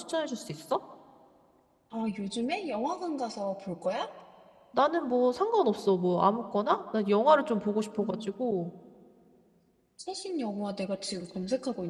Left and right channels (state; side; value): identical; both; correlation 1.00